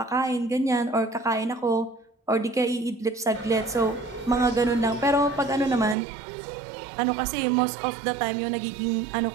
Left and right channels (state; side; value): drops out; left; at 6.0 s